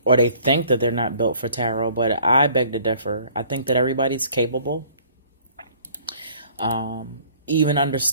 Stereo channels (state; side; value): inverted; both; correlation -0.56